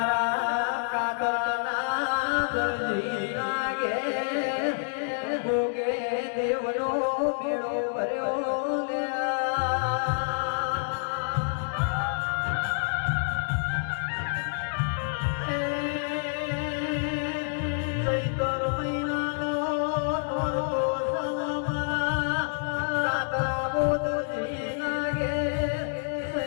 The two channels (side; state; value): right; silent; digital silence